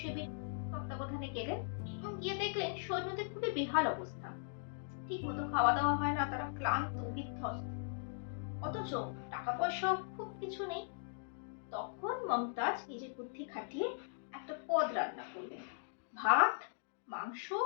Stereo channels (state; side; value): silent; right; digital silence